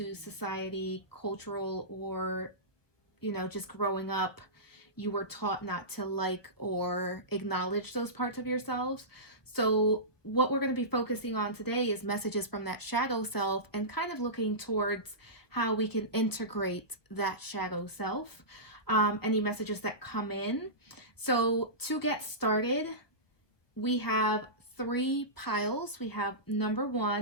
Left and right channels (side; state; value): right; late; 1.1 ms